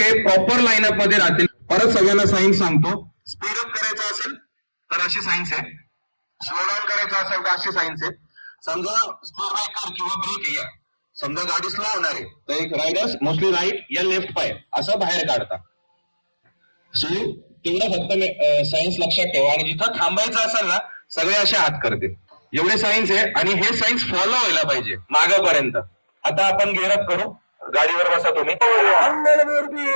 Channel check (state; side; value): inverted; both; correlation -1.00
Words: प्रॉपर लाईनअप मध्ये राहतील. परत सगळ्यांना सायन्स सांगतो. स्पीड अप करायचं असेल तर अशी सायन्स आहे, स्लो डाऊन करायचं असेल तर अशी सायन्स आहे. समजा स्पीड ब्रेकर किंवा ब्रेक आहे, समजा गाडी स्लो होणार आहे तर एक रायडर्स मोस्टली राईट या लेफ्ट पाय असं बाहेर काढता. सो तेवढं फक्त सायन्स लक्षात ठेवा, आणि जिथं थांबायचं असेल ना सगळे असे हात करतील. एवढे सायन्स आहे, आणि हे सायन्स फॉलो व्हायला पाहिजे मागापर्यंत. आता आपण गेअरअप करू. गाडीवर बसा तुम्ही.